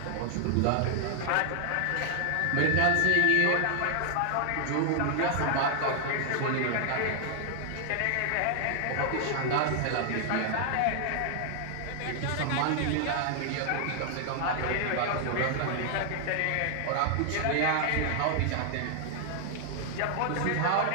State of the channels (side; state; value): both; different; correlation 0.00